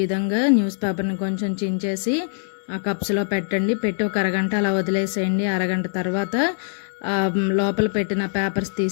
విధంగా న్యూస్ పేపర్ని కొంచెం చించేసి ఆ కప్స్లో పెట్టండి. పెట్టి ఒక అరగంట అలా వదిలేసేయండి. అరగంట తర్వాత లోపల పెట్టిన పేపర్స్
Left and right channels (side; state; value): right; silent; digital silence